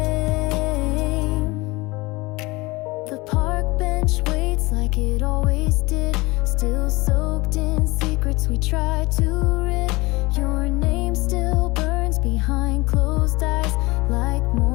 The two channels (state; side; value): quieter; right; 23.0 dB